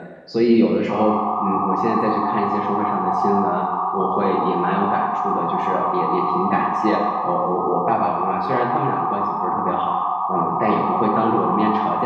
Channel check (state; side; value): identical; both; correlation 1.00